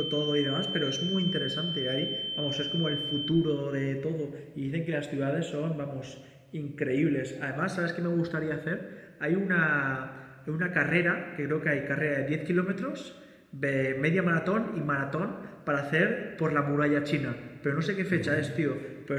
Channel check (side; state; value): both; identical; correlation 1.00